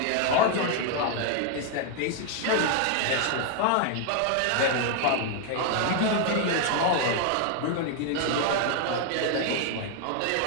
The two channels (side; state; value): both; different; correlation 0.00